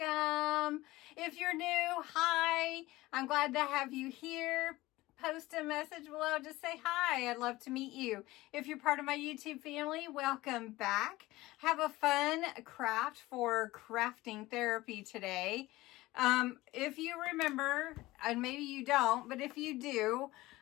If you're new, hi. I'm glad to have you here. Post a message below. Just say hi. I'd love to meet you. If you're part of my YouTube family, welcome back. Have a fun craft for crafting therapy today. If you remember, and maybe you don't, but if you do,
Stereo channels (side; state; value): right; quieter; 18.8 dB